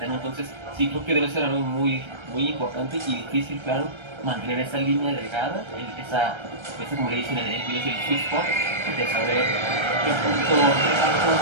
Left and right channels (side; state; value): left; late; 1.3 ms